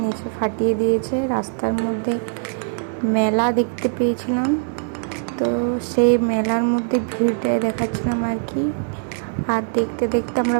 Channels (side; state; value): left; silent; digital silence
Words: নিচে ফাটিয়ে দিয়েছে, রাস্তার মধ্যে মেলা দেখতে পেয়েছিলাম। তো সেই মেলার মধ্যে ভিড়টাই দেখাচ্ছিলাম আর কি। আর দেখতে দেখতে